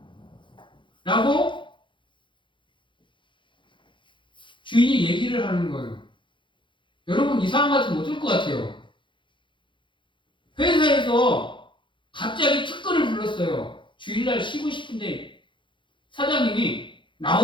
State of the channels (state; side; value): late; right; 0.23 ms